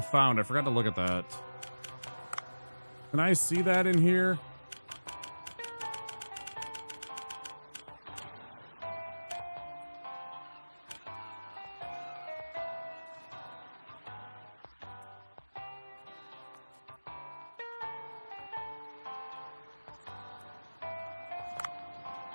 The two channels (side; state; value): both; inverted; correlation -1.00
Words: found? I forgot to look at that. Can I see that in here?